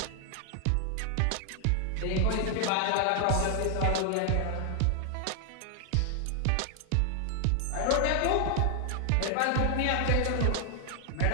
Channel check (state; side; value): different; both; correlation 0.00